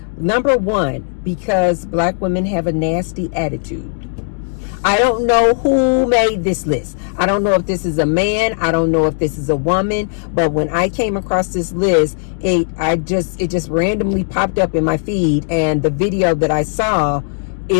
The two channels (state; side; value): silent; right; digital silence